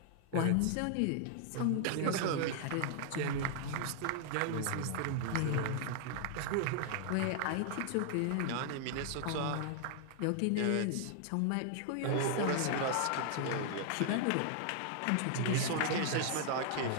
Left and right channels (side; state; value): both; different; correlation 0.00